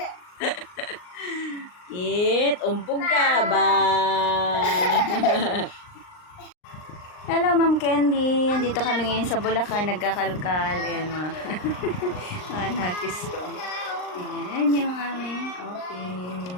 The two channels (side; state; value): right; late; 39 ms